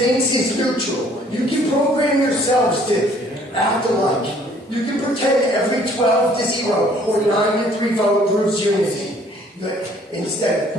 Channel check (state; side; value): normal; both; correlation 0.59